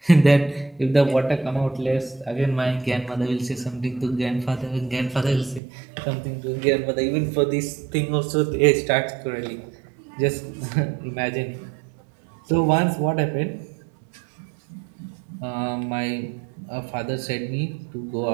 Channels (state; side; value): drops out; left; at 5.6 s